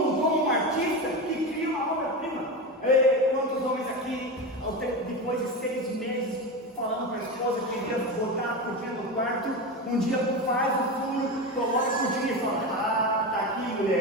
como um artista que cria uma obra-prima. Quantos homens aqui, depois de 6 meses, falando para a esposa que queria botar a cortina do quarto, um dia faz o furo, coloca a cortina e fala: ah, tá aqui,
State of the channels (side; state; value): both; normal; correlation 0.20